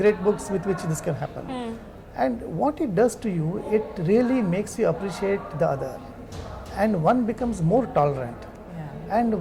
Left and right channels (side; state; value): both; identical; correlation 1.00